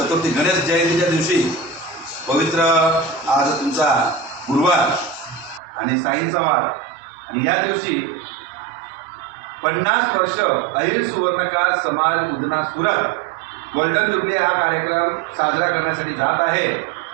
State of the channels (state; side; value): drops out; left; at 5.6 s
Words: गणेश जयंतीच्या दिवशी पवित्र आज तुमचा गुरुवार आणि साईंचा वार आणि या दिवशी 50 वर्ष अहिर सुवर्णकार समाज उदना सुरत गोल्डन जुबली हा कार्यक्रम साजरा करण्यासाठी जात आहे।